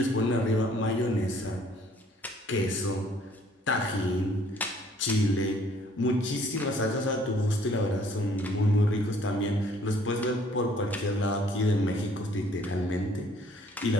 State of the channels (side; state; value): both; normal; correlation 0.60